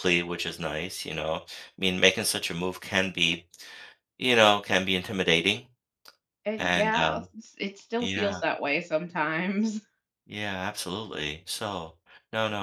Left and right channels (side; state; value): both; identical; correlation 1.00